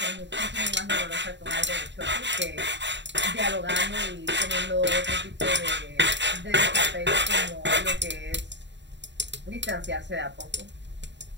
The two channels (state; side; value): late; left; 0.52 ms